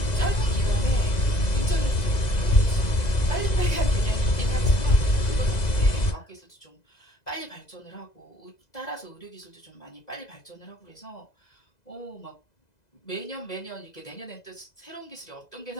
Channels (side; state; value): right; late; 2.0 ms